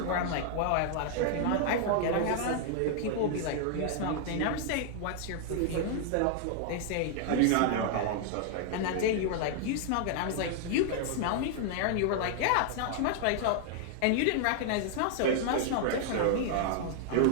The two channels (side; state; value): both; different; correlation -0.01